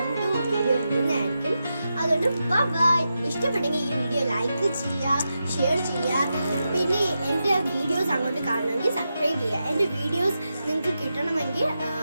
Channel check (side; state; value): both; inverted; correlation -0.88